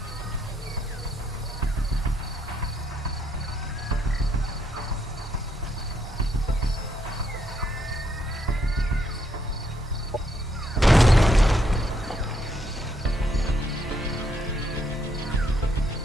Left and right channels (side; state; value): both; normal; correlation 0.74